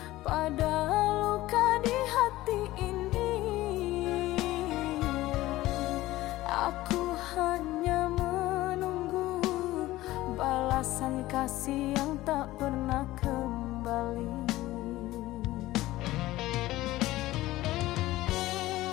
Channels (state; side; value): quieter; right; 16.9 dB